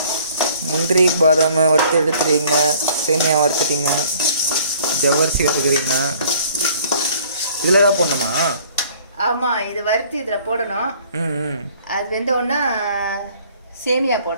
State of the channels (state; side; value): inverted; both; correlation -0.55